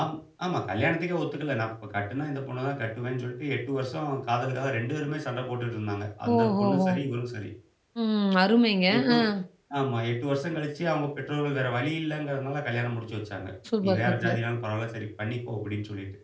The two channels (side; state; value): both; identical; correlation 1.00